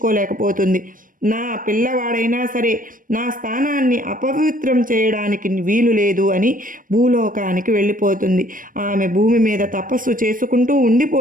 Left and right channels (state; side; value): late; left; 0.40 ms